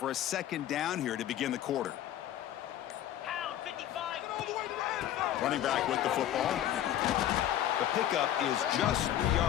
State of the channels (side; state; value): right; quieter; 11.9 dB